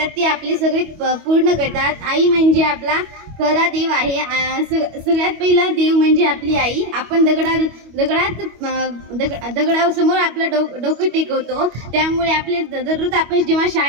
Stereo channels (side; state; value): left; late; 25 ms